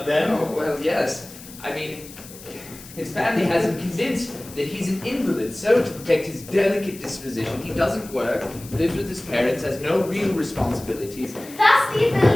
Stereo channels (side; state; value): left; noise; hiss, 17 dB below the sound